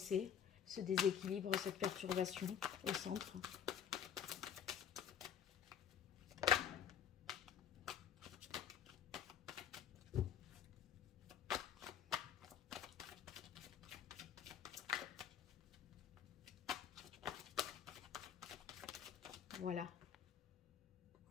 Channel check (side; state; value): right; quieter; 8.6 dB